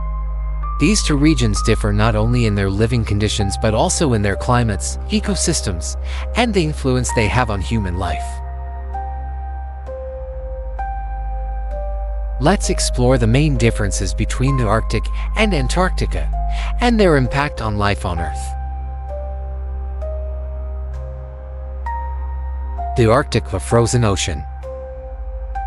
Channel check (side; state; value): both; identical; correlation 1.00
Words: These two regions differ not only in their living conditions but also in their climates, ecosystems, and the influence they have on human life. Let's explore the main differences between the Arctic and Antarctica and their impact on life on Earth. The Arctic, the frozen ocean.